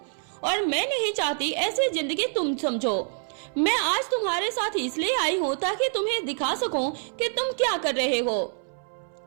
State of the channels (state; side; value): silent; left; 60 dB below the other